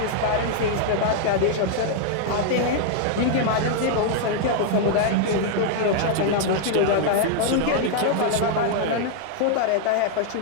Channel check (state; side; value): different; both; correlation 0.00